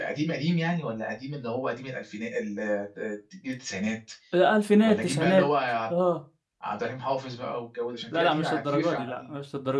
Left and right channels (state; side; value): identical; both; correlation 1.00